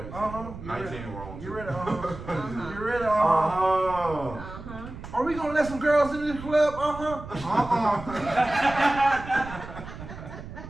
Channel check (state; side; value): noise; right; rumble, 12 dB below the sound